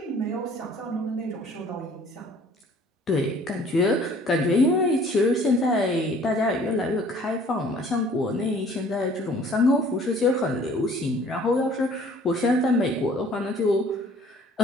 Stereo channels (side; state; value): both; normal; correlation 0.54